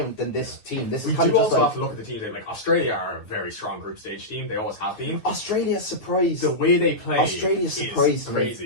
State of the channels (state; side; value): late; right; 9.5 ms